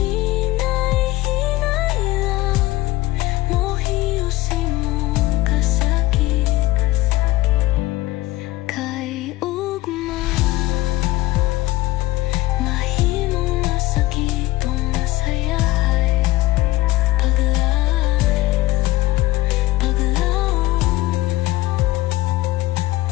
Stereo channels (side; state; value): right; quieter; 17.7 dB